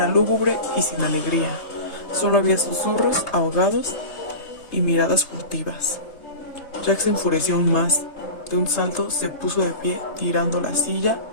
lúgubre y sin alegría. Solo había susurros ahogados y miradas furtivas. Jack se enfureció aún más. De un salto se puso de pie, tirando la silla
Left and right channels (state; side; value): late; right; 3.3 ms